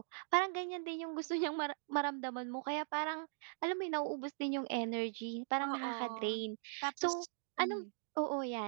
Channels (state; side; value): silent; left; digital silence